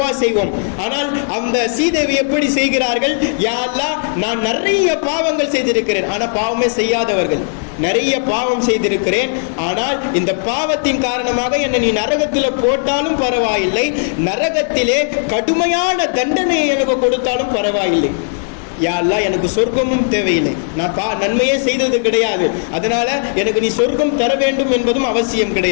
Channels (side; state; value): right; silent; 65 dB below the other